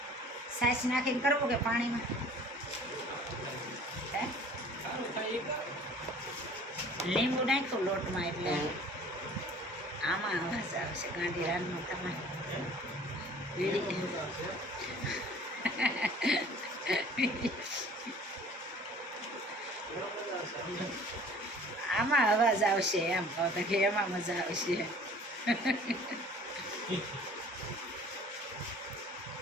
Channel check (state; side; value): normal; both; correlation 0.49